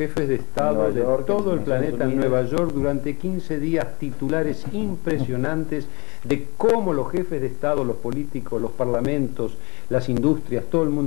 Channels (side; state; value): right; quieter; 29.6 dB